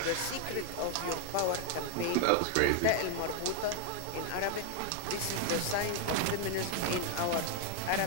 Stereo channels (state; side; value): different; both; correlation 0.01